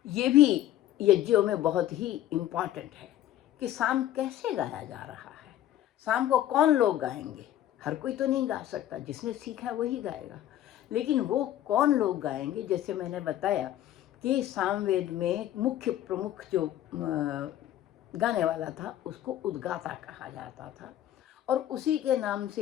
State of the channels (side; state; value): right; quieter; 12.6 dB